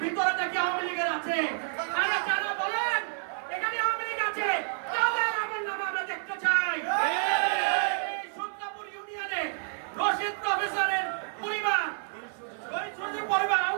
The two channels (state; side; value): silent; left; 55 dB below the other